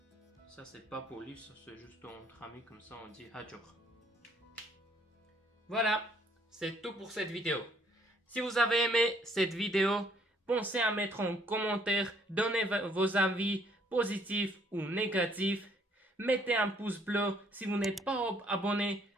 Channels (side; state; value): both; normal; correlation 0.64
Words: pas poli, ça c'est juste entre amis, comme ça on dit Hajor. Voilà, c'est tout pour cette vidéo. Si vous avez aimé cette vidéo, pensez à mettre en commentaire, donnez vos avis positifs ou négatifs. Mettez un pouce bleu. Si vous n'êtes pas abonné,